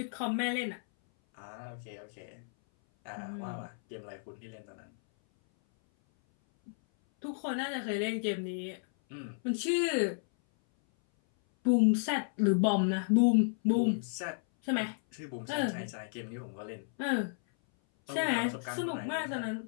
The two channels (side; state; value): right; silent; 56 dB below the other